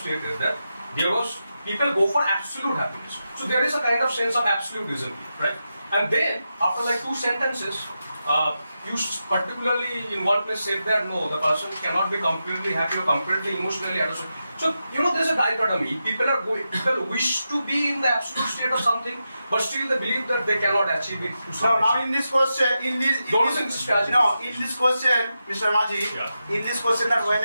that there was people go for absolute happiness. So there is a kind of sense of absolutism, right? And then after like two sentences, you particularly in one place said that no, the person cannot be completely happy or completely emotionally attached. So there's a dichotomy. People wish to be in the absolute state of something, but still they believe that they cannot achieve it. Now in this question, Don't in this question, Mr. Maji, Yeah. in this question that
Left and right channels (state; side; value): inverted; both; correlation -0.89